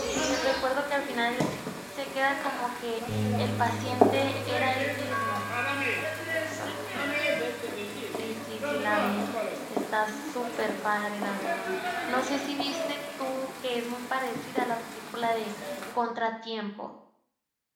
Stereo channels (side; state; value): both; identical; correlation 1.00